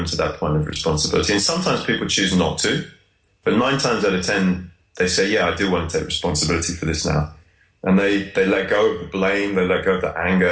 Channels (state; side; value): identical; both; correlation 1.00